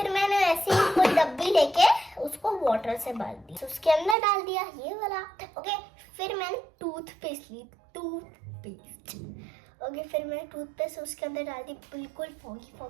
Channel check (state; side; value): drops out; left; at 4.2 s